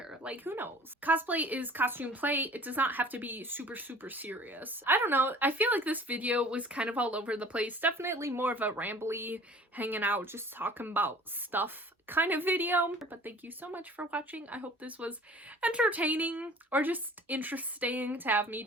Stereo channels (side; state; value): both; normal; correlation 0.47